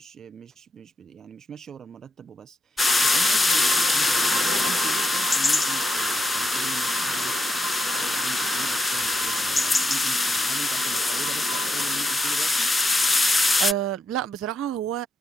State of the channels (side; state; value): both; normal; correlation 0.83